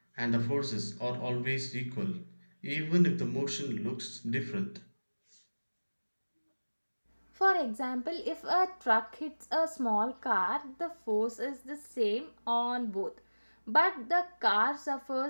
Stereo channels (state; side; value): inverted; both; correlation -1.00